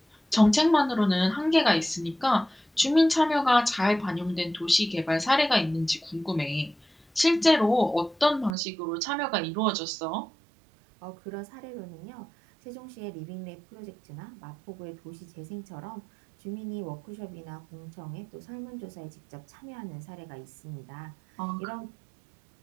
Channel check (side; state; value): left; drops out; at 8.6 s